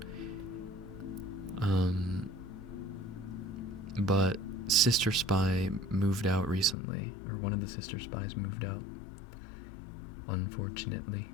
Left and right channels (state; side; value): drops out; right; at 6.8 s